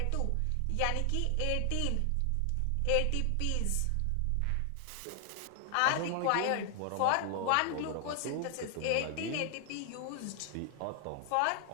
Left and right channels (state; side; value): different; both; correlation 0.00